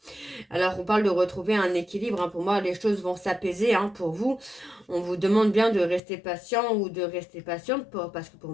Alors, on parle de retrouver un équilibre, hein. Pour moi, les choses vont s'apaiser, hein, pour vous. On vous demande bien de rester patient ou de rester patiente parce que pour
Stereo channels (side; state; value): right; drops out; at 6.0 s